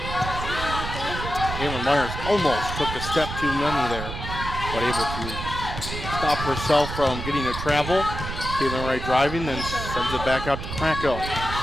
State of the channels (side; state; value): right; noise; rumble, 6 dB below the sound